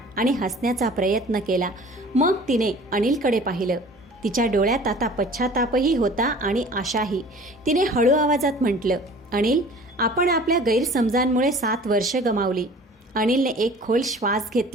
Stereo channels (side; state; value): both; normal; correlation 0.46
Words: आणि हसण्याचा प्रयत्न केला. मग तिने अनिलकडे पाहिलं. तिच्या डोळ्यात आता पश्चातापही होता आणि आशाही. तिने हळू आवाजात म्हटलं, अनिल, आपण आपल्या गैरसमजांमुळे 7 वर्ष गमावली. अनिलने एक खोल श्वास